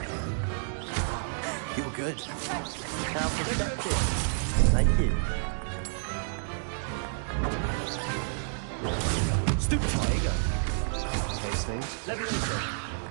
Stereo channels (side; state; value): left; silent; digital silence